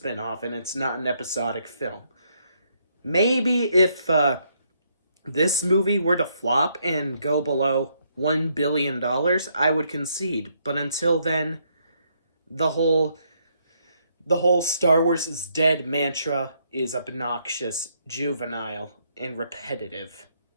and it's not an episodic film. Maybe if this movie were to flop and go below $1 billion, I would concede. But until then, the whole Star Wars is dead mantra is obnoxious, juvenile, and repetitive.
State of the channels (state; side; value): inverted; both; correlation -0.73